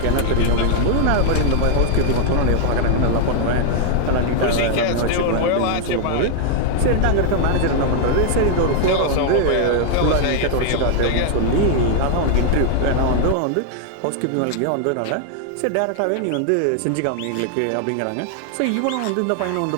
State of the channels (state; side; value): different; both; correlation 0.00